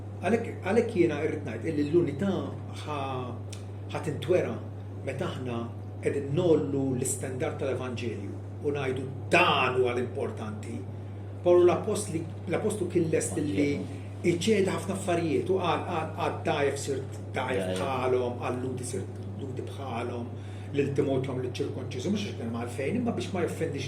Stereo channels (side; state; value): both; identical; correlation 1.00